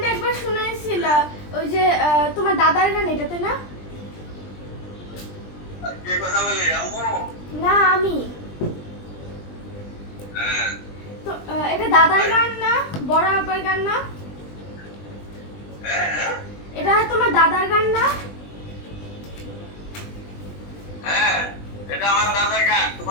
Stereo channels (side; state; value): right; late; 20 ms